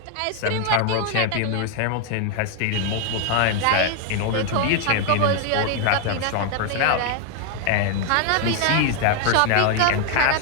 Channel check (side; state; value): both; different; correlation 0.00